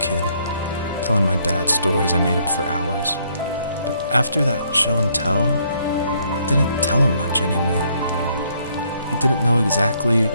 telling my dad stories I made up for hours. But after that show and tell, I didn't tell him much anymore. He didn't know exactly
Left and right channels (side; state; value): both; inverted; correlation -0.69